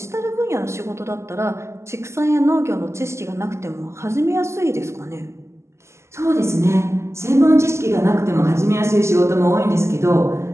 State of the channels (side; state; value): left; late; 0.13 ms